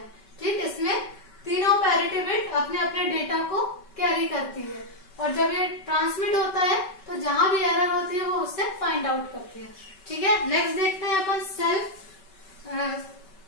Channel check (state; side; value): late; right; 5.2 ms